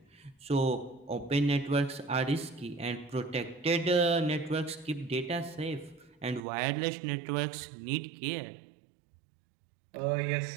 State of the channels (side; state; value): left; drops out; at 6.4 s